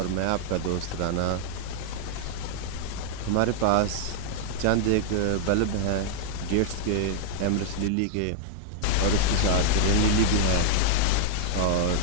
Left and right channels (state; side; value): different; both; correlation -0.01